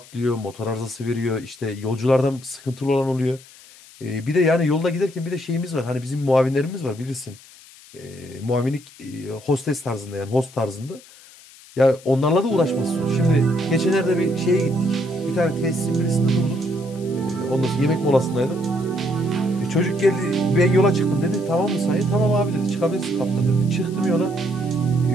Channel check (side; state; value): left; noise; hiss, 22 dB below the sound